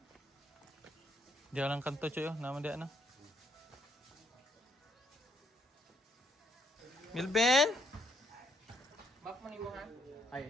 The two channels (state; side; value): normal; both; correlation 0.70